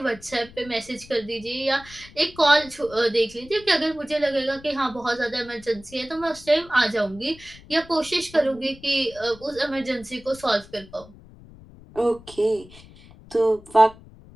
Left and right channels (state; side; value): noise; left; rumble, 21 dB below the sound